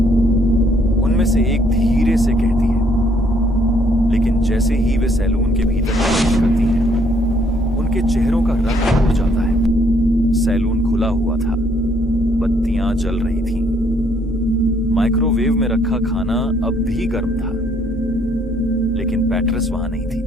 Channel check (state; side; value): normal; both; correlation 0.67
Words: उनमें से एक धीरे से कहती है, लेकिन जैसे ही वे सैलून के भीतर प्रवेश करती हैं, उनके चेहरों का रंग उड़ जाता है। सैलून खुला हुआ था, बत्तियां जल रही थीं। माइक्रोवेव में रखा खाना अब भी गर्म था, लेकिन पैट्रिस वहां नहीं थी।